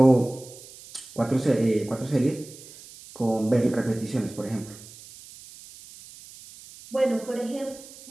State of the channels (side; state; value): right; noise; hiss, 19 dB below the sound